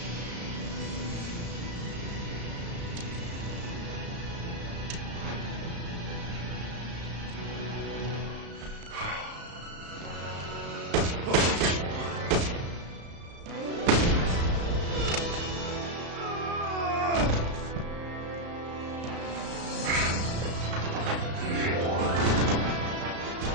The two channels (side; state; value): left; late; 35 ms